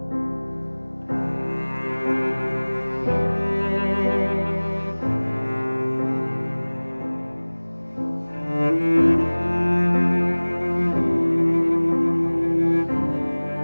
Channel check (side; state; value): both; inverted; correlation -1.00